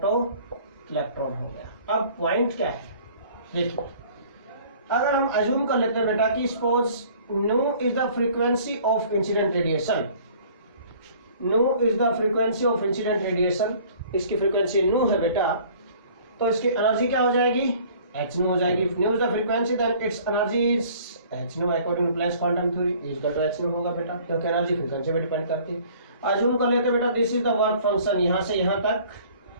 इलेक्ट्रॉन हो गया। अब पॉइंट क्या है, देखिए अगर हम अज्यूम कर लेते हैं बेटा कि suppose new is the frequency of incident radiation, new is the frequency of incident radiation, इसकी फ्रीक्वेंसी न्यू है बेटा, तो इसकी एनर्जी क्या हो जाएगी, एच न्यू हो जाएगी। Nu is the frequency then it's energy is h nu according to Planck's quantum theory is equal to H nu होगा बेटा, क्योंकि एनर्जी फ्रीक्वेंसी पे डिपेंड करती है। अज्यूम कर लेते हैं बेटा this is the work function, यहां से यहां तक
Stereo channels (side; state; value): both; inverted; correlation -0.52